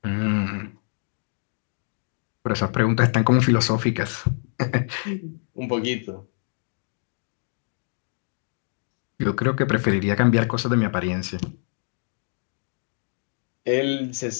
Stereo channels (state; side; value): silent; right; 61 dB below the other